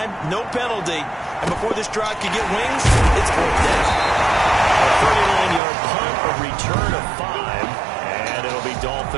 no penalty, and before this drive could get wings, it's fourth down. A 39-yard punt, a return of 5, and it'll be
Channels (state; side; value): drops out; left; at 5.6 s